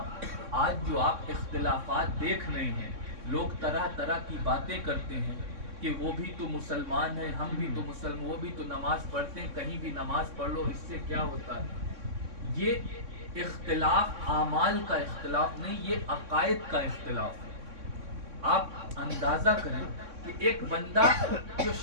آج جو آپ اختلافات دیکھ رہے ہیں، لوگ طرح طرح کی باتیں کرتے ہیں کہ وہ بھی تو مسلمان ہیں، ہم بھی تو مسلمان، وہ بھی تو نماز پڑھتے ہیں، کہیں بھی نماز پڑھ لو، اس سے کیا ہوتا ہے؟ یہ اختلاف اعمال کا اختلاف نہیں، یہ عقائد کا اختلاف ہے۔ آپ اندازہ کریں کہ ایک بندہ جو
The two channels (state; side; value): late; left; 3.6 ms